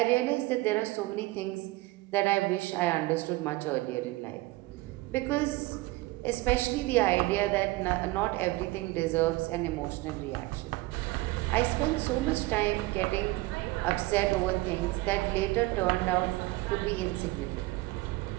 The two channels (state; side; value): quieter; left; 20.5 dB